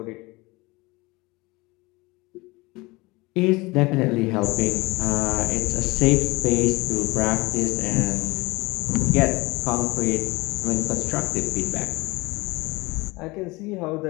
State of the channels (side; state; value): right; quieter; 22.9 dB